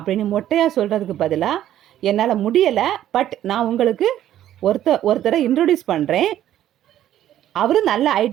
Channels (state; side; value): quieter; left; 12.1 dB